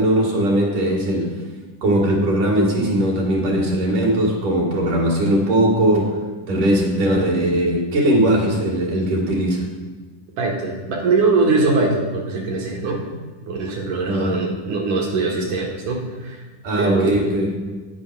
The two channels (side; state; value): left; late; 10 ms